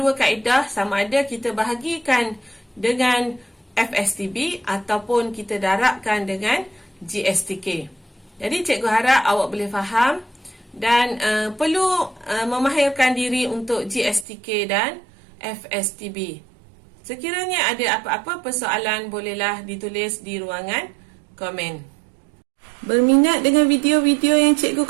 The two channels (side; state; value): left; drops out; at 14.2 s